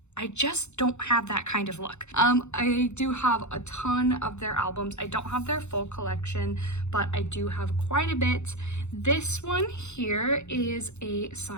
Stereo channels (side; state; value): right; late; 0.82 ms